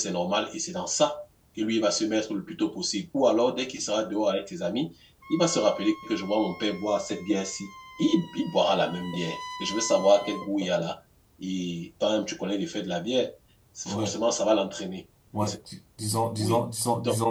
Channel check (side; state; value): both; identical; correlation 1.00